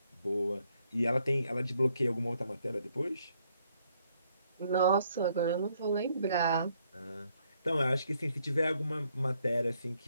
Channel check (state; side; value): inverted; both; correlation -0.72